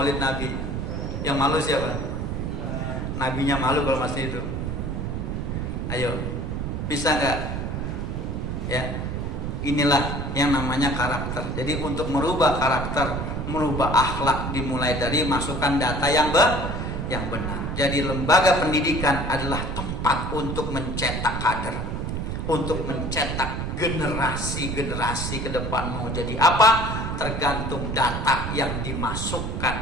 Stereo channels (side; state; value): right; noise; rumble, 3 dB below the sound